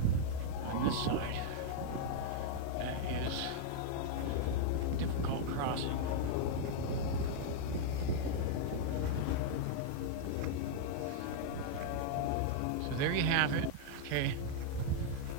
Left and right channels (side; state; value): both; different; correlation -0.01